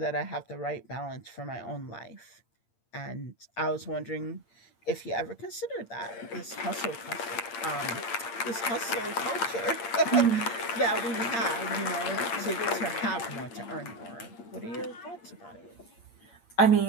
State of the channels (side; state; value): right; late; 8.7 ms